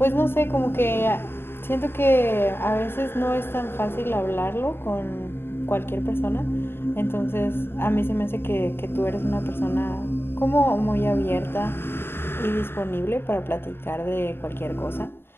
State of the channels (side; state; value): right; late; 0.11 ms